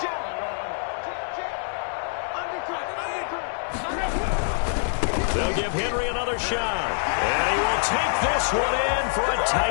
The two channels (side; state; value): right; silent; digital silence